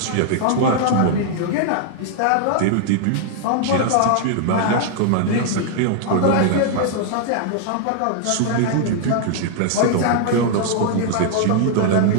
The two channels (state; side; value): different; both; correlation 0.00